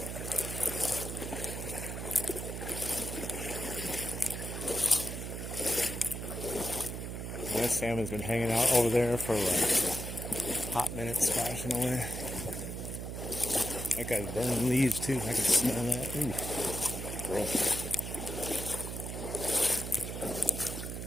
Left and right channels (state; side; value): noise; right; hum, 6 dB below the sound